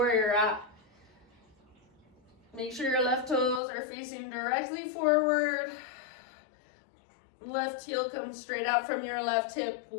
you're at. Make sure your left toes are facing directly forward. Left heel comes straight out from your left hip.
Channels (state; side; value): drops out; right; at 3.6 s